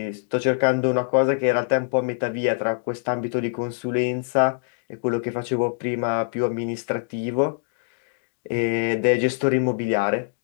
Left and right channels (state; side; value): silent; right; digital silence